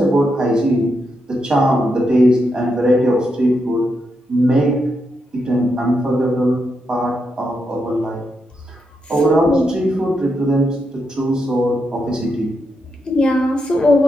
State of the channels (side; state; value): both; normal; correlation 0.83